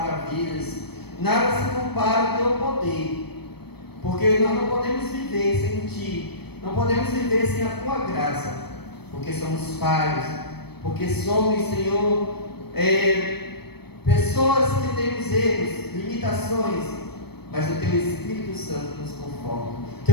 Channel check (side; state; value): right; late; 0.97 ms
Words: nada se compara ao Teu poder, porque nós não podemos viver sem Ti, não podemos viver sem a Tua graça, porque somos falhos, porque somos, Senhor, pessoas que temos erros, limitações, mas o Teu Espírito Santo nos conforta. O